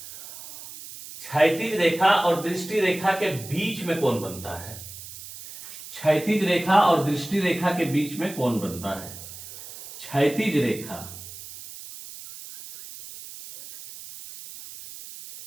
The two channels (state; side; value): noise; right; hiss, 14 dB below the sound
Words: क्षैतिज रेखा और दृष्टि रेखा के बीच में कौन बनता है, क्षैतिज रेखा और दृष्टि रेखा के बीच में कौन बनता है, क्षैतिज रेखा